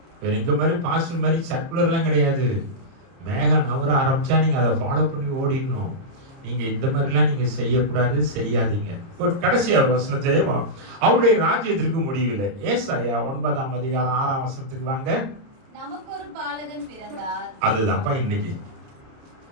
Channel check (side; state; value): left; late; 30 ms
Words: இந்த மாதிரி பாஸ்டர் மாதிரி சர்க்குலர்லாம் கிடையாது. மேகம் நகர ஆரம்பிச்சா நீங்க அதை ஃபாலோ பண்ணி ஓடிடணும். நீங்க இந்த மாதிரிலாம் நீங்க செய்யக்கூடாது, செய்யாதீங்க. கடைசி ஒரு வசனத்தை, அவருடைய ராஜ்யத்திற்கு முடிவில்லை. ஏசாயா 9ஆம் அதிகாரம் 6ஆம் வசனத்துக்கு வாங்க. நமக்கு ஒரு பாலகன் பிறந்தார். அதுதான்ப்பா இன்னைக்கு